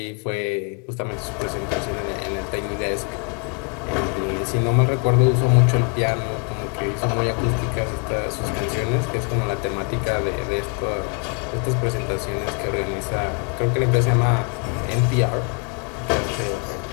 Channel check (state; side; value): quieter; right; 35.3 dB